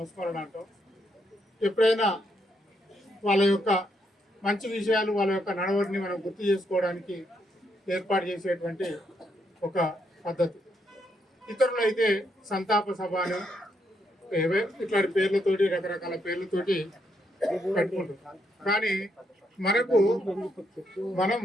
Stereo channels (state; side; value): normal; both; correlation 0.77